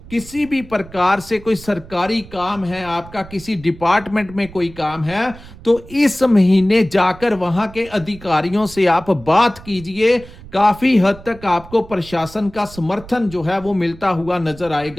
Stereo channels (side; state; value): right; noise; rumble, 18 dB below the sound